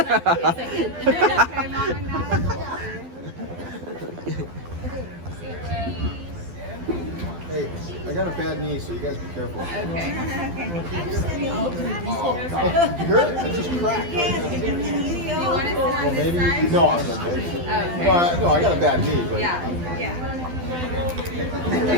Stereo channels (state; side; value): late; left; 12 ms